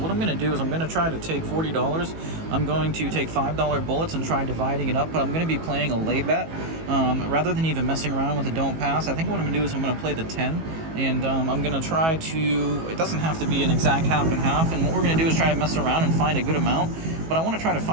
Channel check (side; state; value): left; late; 18 ms